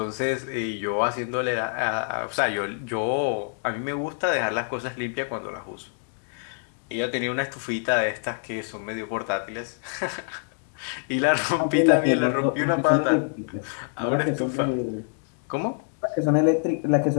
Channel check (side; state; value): right; silent; 61 dB below the other